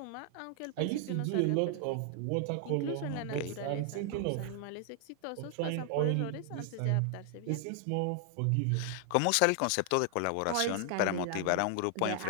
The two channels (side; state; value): both; different; correlation 0.00